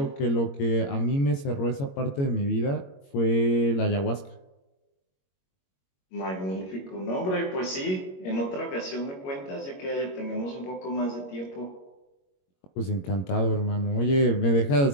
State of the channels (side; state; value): right; late; 21 ms